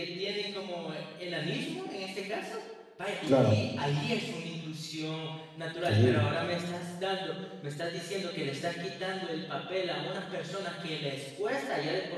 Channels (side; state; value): both; identical; correlation 1.00